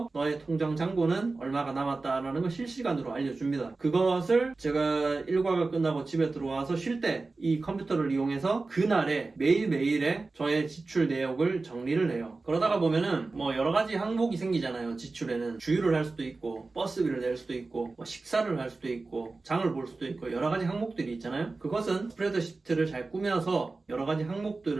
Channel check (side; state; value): left; quieter; 3.6 dB